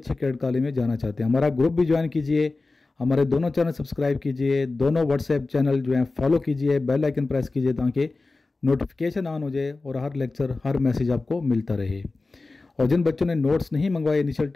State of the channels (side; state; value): right; quieter; 3.5 dB